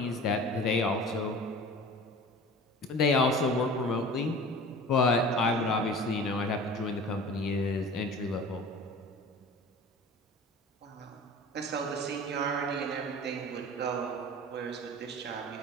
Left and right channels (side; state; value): both; normal; correlation 0.40